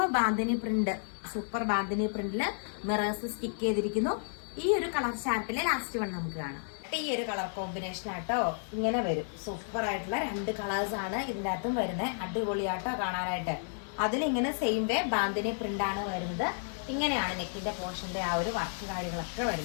bandhani print, super bandhani പ്രിന്റില് മിറേഴ്സ് സ്റ്റിക്ക് ചെയ്തിരിക്കുന്നു. ഈ ഒരു കളർ ചാർട്ടിലെ ലാസ്റ്റ് വൺ നമുക്ക് കാണാം. ഈ ഒരു കളർ കോമ്പിനേഷൻ ആട്ടോ. ഇങ്ങനെ വരും, സൂപ്പർ ആയിട്ടുള്ള രണ്ട് കളേഴ്സ് ആണ് ഇതിന്റെ അകത്തും വരുന്നത്. അടിപൊളിയാട്ടോ കാണാനായിട്ട്. അതിലിങ്ങനെ സെയിം വേ ബാന്തിനി പ്രിന്റ് ആണ് വരുന്നത്. ഇങ്ങനെയാണ് നെക്കിന്റെ പോർഷന്റെ ആ ഒരു വർക്ക് കാര്യങ്ങളൊക്കെ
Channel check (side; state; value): right; silent; 56 dB below the other